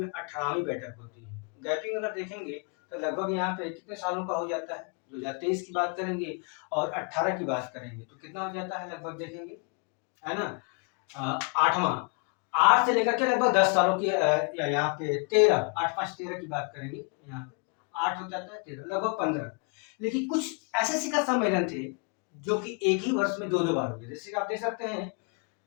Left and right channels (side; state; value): right; quieter; 36.0 dB